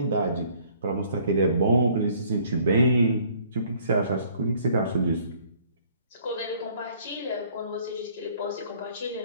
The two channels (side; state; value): both; inverted; correlation -0.59